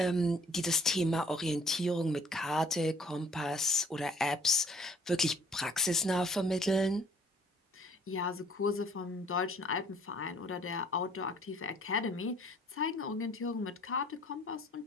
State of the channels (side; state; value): both; normal; correlation 0.57